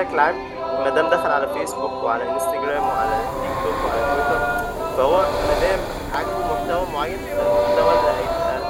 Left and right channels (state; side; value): identical; both; correlation 1.00